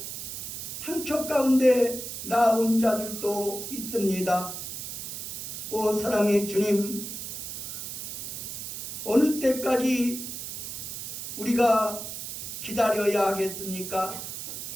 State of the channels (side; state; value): right; noise; hiss, 7 dB below the sound